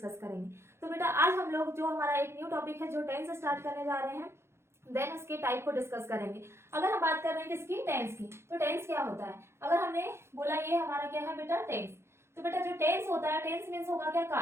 करेंगे। तो बेटा आज हम लोग जो हमारा एक न्यू टॉपिक है जो टेंस स्टार्ट करने जा रहे हैं, देन उसके टाइप को डिस्कस करेंगे। अगर हम बात कर रहे हैं किसकी, टेंस की, तो टेंस क्या होता है। अगर हमने बोला ये हमारा क्या है बेटा टेंस, तो बेटा जो टेंस होता है, टेंस मीन्स होगा क्या,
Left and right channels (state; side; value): late; left; 0.12 ms